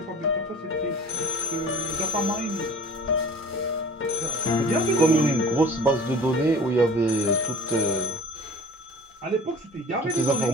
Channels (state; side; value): normal; both; correlation 0.44